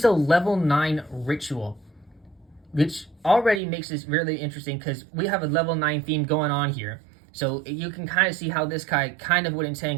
a level 9 ritual, which already makes this really interesting because we have a level 9 theme going on here. So you can kind of see how this guy kind of would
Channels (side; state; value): left; drops out; at 3.6 s